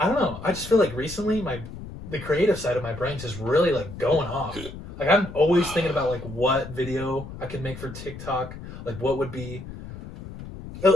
know, I just feel like recently the creative side of my brain is really like going off. Like I'm always thinking about like what video I could make for TikTok, like what would be,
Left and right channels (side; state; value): left; noise; rumble, 12 dB below the sound